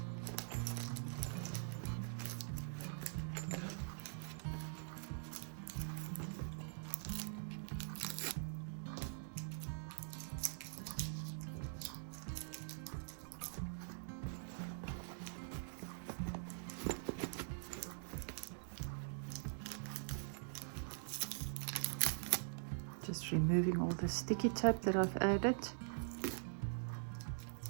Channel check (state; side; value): silent; left; digital silence